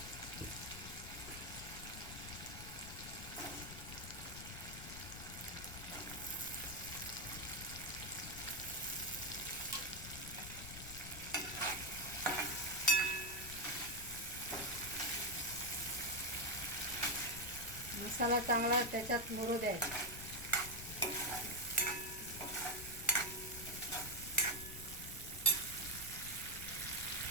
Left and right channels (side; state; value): left; noise; rumble, 11 dB below the sound